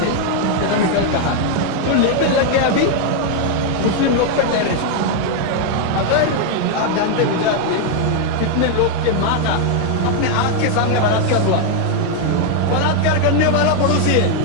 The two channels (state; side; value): different; both; correlation 0.00